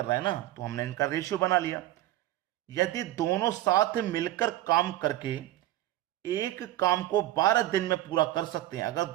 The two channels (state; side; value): quieter; left; 15.0 dB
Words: रहा है ना, तो हमने इनका रेशियो बना लिया। यदि दोनों साथ मिलकर काम करके एक काम को 12 दिन में पूरा कर सकते हैं, अगर